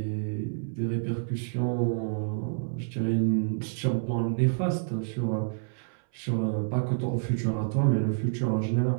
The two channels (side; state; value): left; silent; 59 dB below the other